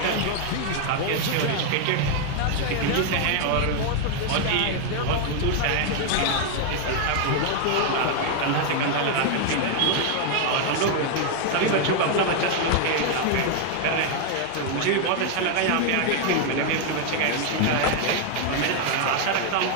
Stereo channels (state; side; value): different; both; correlation 0.00